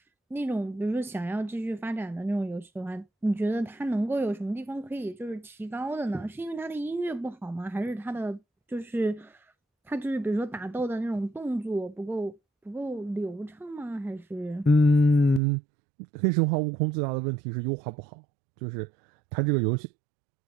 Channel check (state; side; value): drops out; left; at 15.4 s